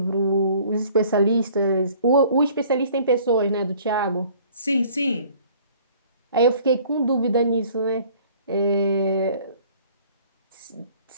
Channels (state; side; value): inverted; both; correlation -0.54